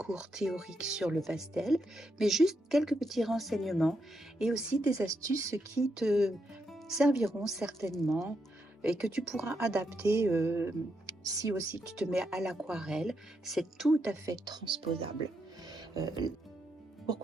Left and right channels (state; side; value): normal; both; correlation 0.81